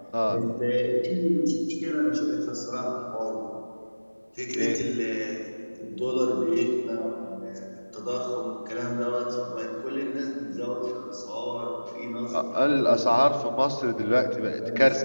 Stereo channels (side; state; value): both; inverted; correlation -1.00